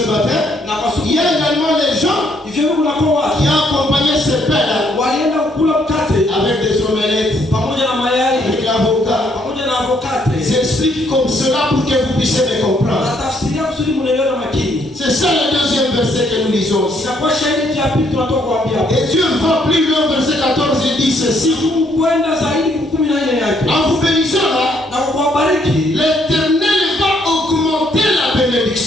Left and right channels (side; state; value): both; normal; correlation 0.70